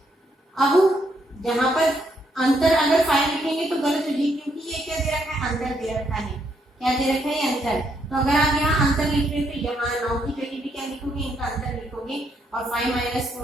अब यहाँ पर अंतर अगर 5 लिखेंगे तो गलत हो जाएगी, क्योंकि ये क्या दे रखा है, अंतर दे रखा है। क्या दे रखा है, अंतर। तो अगर आप यहाँ अंतर लिख रहे तो यहाँ 9 की जगह भी क्या लिखोगे, इनका अंतर लिखोगे, और 5 -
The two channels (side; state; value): both; normal; correlation 0.75